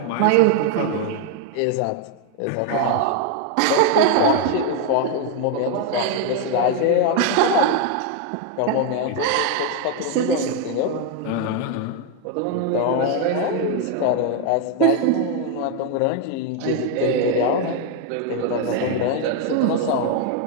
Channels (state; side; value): different; both; correlation 0.01